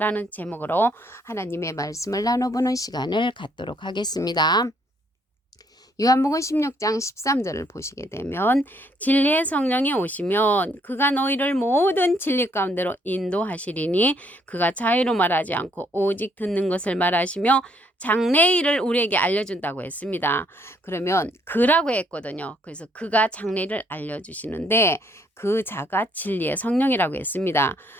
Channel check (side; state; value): both; normal; correlation 0.68